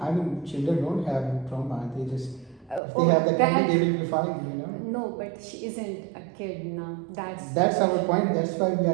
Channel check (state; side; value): drops out; left; at 2.8 s